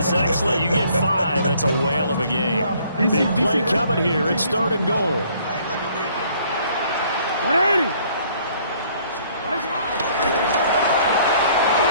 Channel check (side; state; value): both; inverted; correlation -0.61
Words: excellent. You get 5, that's a whale of a game. Big play coming here. It's 3rd and goal.